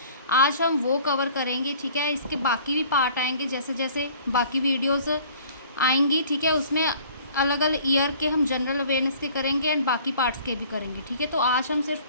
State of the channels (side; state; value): both; inverted; correlation -0.52